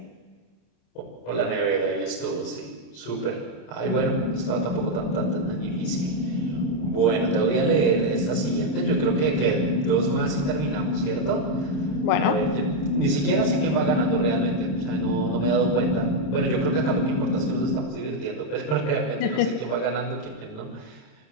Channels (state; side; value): late; right; 27 ms